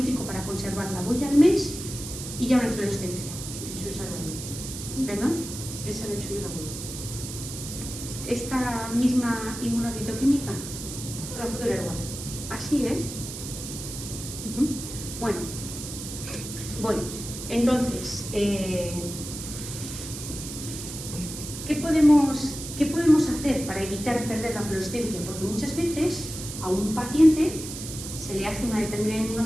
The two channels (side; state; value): right; noise; hiss, 9 dB below the sound